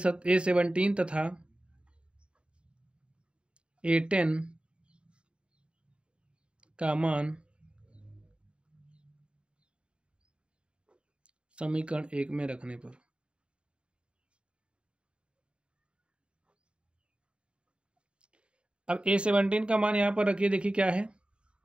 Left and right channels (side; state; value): left; late; 0.055 ms